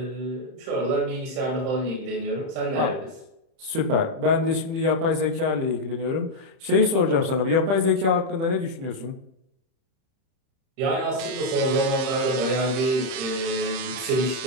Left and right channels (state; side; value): late; left; 30 ms